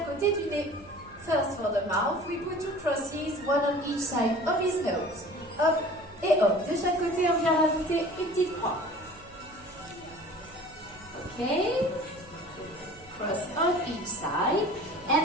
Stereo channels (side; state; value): right; noise; hum, 23 dB below the sound